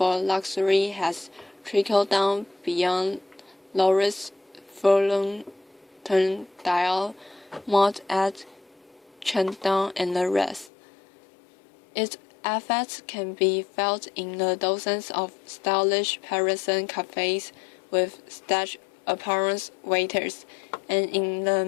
luxury has trickled down beyond Louis Vuitton, Dior, Maud at Chandon, and the rest. It effects can be felt in the dozens of stylish Parisian cafes with stage appearance waiters, and in the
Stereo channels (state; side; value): drops out; right; at 10.7 s